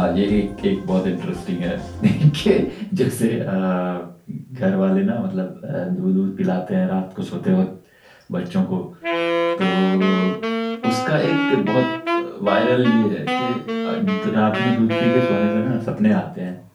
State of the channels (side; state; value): both; identical; correlation 1.00